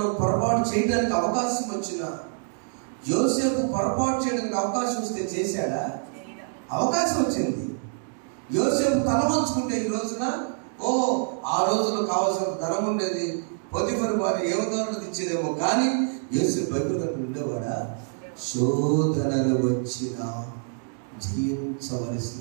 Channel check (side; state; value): left; silent; digital silence